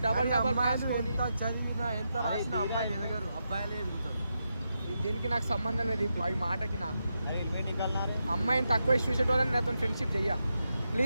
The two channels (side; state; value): both; inverted; correlation -0.86